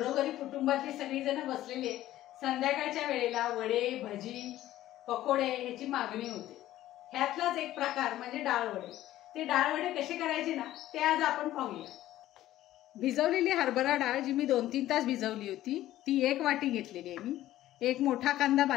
कुटुंबातली सगळी जण बसलेली आहेत। संध्याकाळच्या वेळेला वडे, भजी, पकोडे ह्याची मागणी होते। ह्यातलाच एक प्रकार म्हणजे डाळ वडे। ते डाळ वडे कसे करायचे ना ते आज आपण पाहूया। भिजवलेली हरभरा डाळ जी मी 2-3 तास भिजवली होती ती 1 वाटी घेतलेली आहे मी। एक मोठा कांदा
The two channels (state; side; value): quieter; right; 14.2 dB